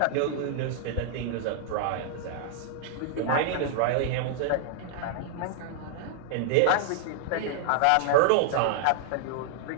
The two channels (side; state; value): both; different; correlation -0.01